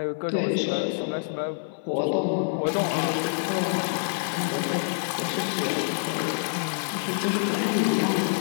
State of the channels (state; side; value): silent; right; 58 dB below the other